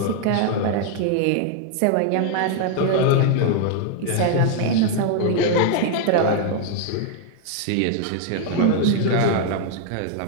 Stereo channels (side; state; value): both; different; correlation 0.00